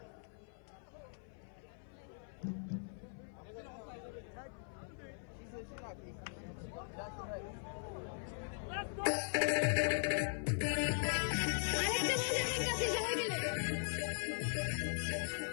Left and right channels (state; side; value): silent; right; 51 dB below the other